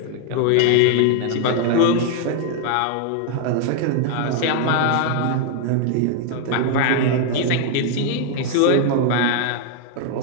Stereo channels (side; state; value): both; different; correlation 0.00